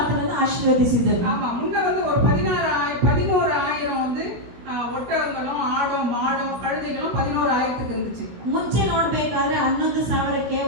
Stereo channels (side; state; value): left; late; 17 ms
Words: ಆಶೀರ್ವದಿಸಿದರು. ஆமா, முன்ன வந்து ஒரு 11,000 வந்து ஒட்டகங்களும் ஆடும் மாடும் கழுதைகளும் 11,000க்கு இருந்துச்சு. ಮುಂಚೆ ನೋಡ್ಬೇಕಾದ್ರೆ 11,000ಕ್ಕೆ